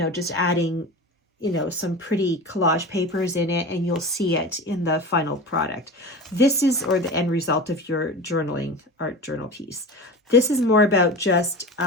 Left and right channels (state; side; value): normal; both; correlation 0.30